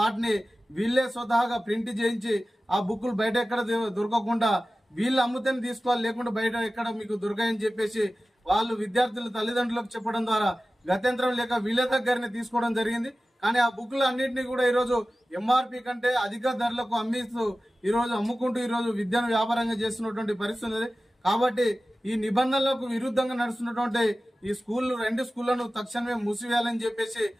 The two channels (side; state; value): both; normal; correlation 0.96